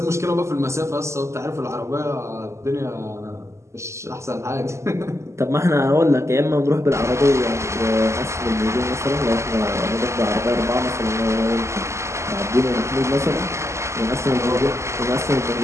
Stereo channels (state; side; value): late; left; 0.13 ms